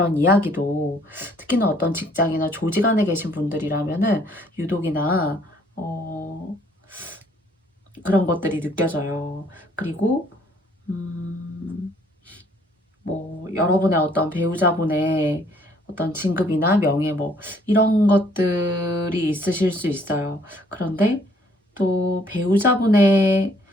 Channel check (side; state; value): both; normal; correlation 0.63